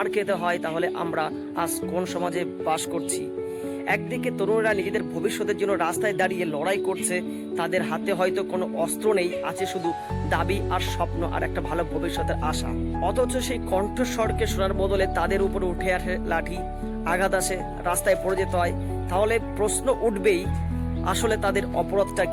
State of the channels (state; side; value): identical; both; correlation 1.00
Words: খেতে হয় তাহলে আমরা আজ কোন সমাজে বাস করছি? একদিকে তরুণরা নিজেদের ভবিষ্যতের জন্য রাস্তায় দাঁড়িয়ে লড়াই করছে, তাদের হাতে হয়তো কোনো অস্ত্র নেই, আছে শুধু দাবি আর স্বপ্ন আর একটা ভালো ভবিষ্যতের আশা। অথচ সেই কণ্ঠস্বরকে শোনার বদলে তাদের উপরে উঠে আসে লাঠি, আঘাত আসে, রাস্তায় পড়ে যেতে হয়। তাহলে প্রশ্ন উঠবেই, আসলে তাদের অপরাধটা